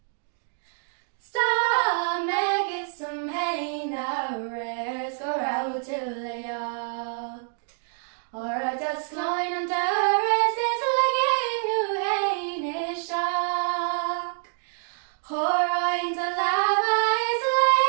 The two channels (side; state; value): left; silent; 61 dB below the other